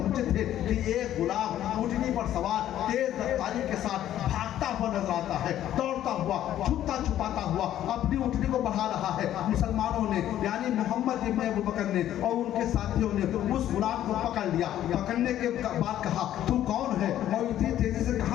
थे कि एक गुलाम ऊँटनी पर सवार तेज रफ्तारी के साथ भागता भागता हुआ नजर आता है, दौड़ता हुआ, छुपता छुपाता हुआ अपनी ऊँटनी को बढ़ा रहा है। मुसलमानों ने यानी मोहम्मद इब्न अबू बकर ने और उनके साथियों ने उस गुलाम को पकड़ लिया। पकड़ने के बाद कहा, तू कौन है और इतनी तेजी से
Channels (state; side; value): quieter; right; 12.0 dB